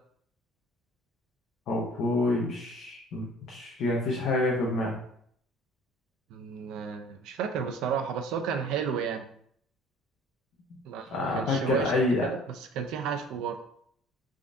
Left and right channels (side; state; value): both; normal; correlation 0.48